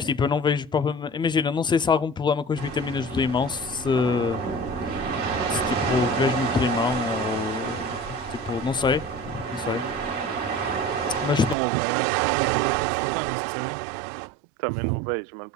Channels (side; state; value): left; drops out; at 11.6 s